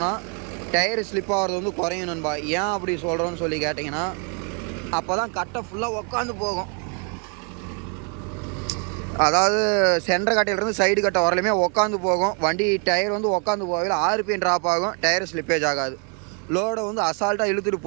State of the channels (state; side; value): quieter; left; 37.7 dB